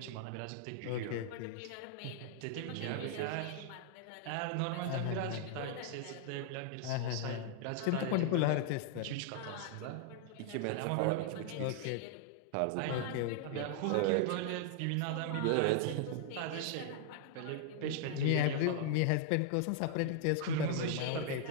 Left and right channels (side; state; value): both; different; correlation -0.01